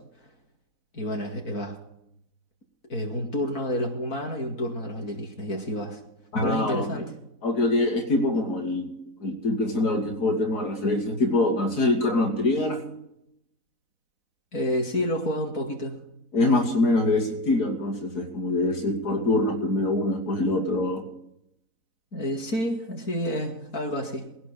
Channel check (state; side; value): late; right; 4.0 ms